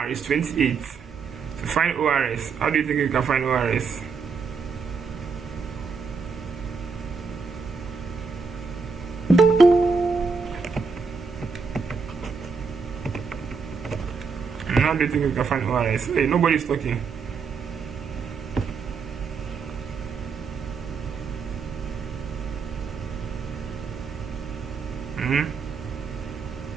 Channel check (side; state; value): left; quieter; 5.2 dB